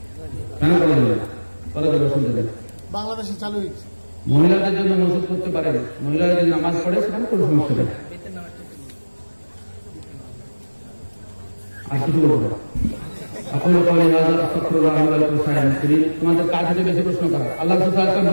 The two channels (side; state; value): both; inverted; correlation -1.00